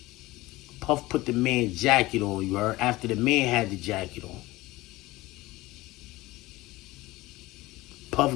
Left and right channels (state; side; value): quieter; right; 19.2 dB